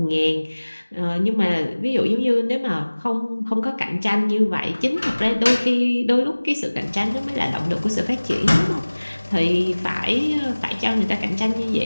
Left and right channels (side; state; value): both; inverted; correlation -1.00